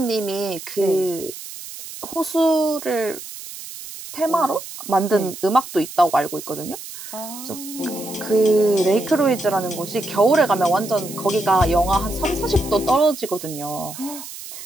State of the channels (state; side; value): noise; right; hiss, 12 dB below the sound